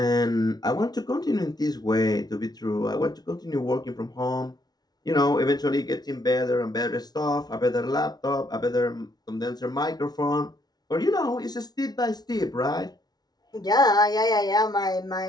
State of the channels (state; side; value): late; right; 0.19 ms